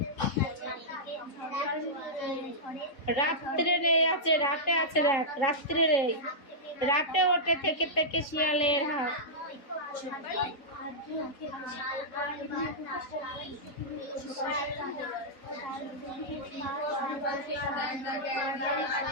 রাত্রে রে আছে, রাতে আছে, দেখ রাত্রে রে। রাতে ওঠে থেকে থেকে শিয়ালের হাত।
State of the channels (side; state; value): right; late; 3.7 ms